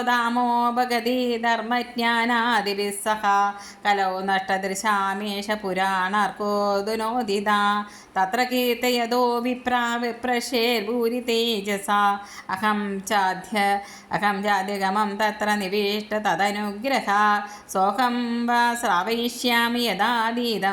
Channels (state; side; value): identical; both; correlation 1.00